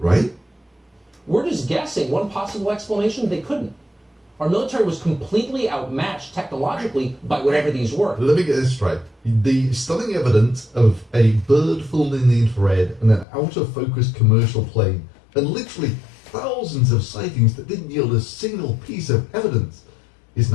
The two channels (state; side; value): drops out; right; at 13.2 s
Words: We're just guessing. One possible explanation, they couldn't. Our military was completely outmatched technologically by whatever these were. Let me get this straight. The stunning evidence of a bird flown in the infrared and an out-of-focus commercial plane, and literally thousands of sightings that didn't yield a single piece of evidence, is